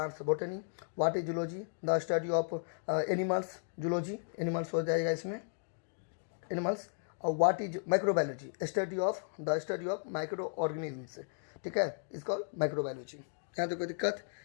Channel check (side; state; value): right; silent; digital silence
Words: botany, what is zoology the study of animals, zoology animals हो जाएगा इसमें, एनिमल्स। और what is microbiology, study of micro organisms, ठीक है, इसको माइक्रोबायोलॉजी। यहाँ तो कोई दिक्कत,